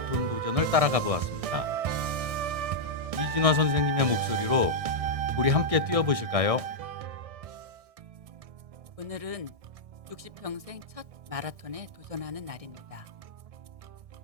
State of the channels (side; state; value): left; late; 1.6 ms